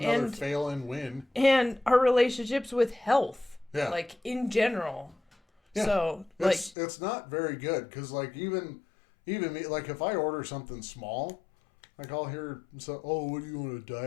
fail and win. And our relationships with health. Yeah. Like in general. Yeah. So it's not very good because like even me, like if I order something small, like I'll hear what do you want, a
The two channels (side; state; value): right; drops out; at 6.8 s